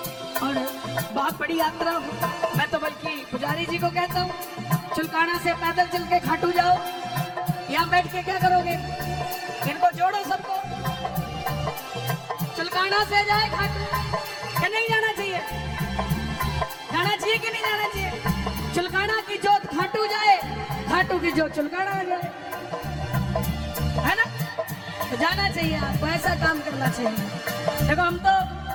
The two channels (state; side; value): identical; both; correlation 1.00